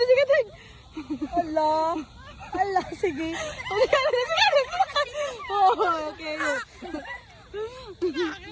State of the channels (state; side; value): identical; both; correlation 1.00